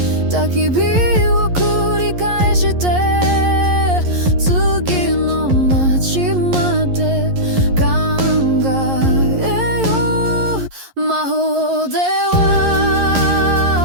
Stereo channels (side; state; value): left; late; 11 ms